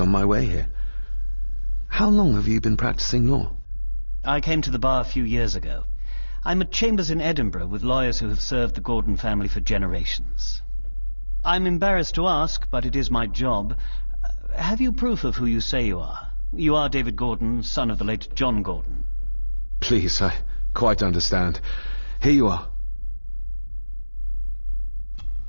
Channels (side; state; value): both; inverted; correlation -1.00